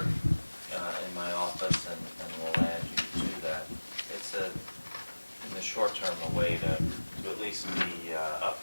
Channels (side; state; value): both; inverted; correlation -1.00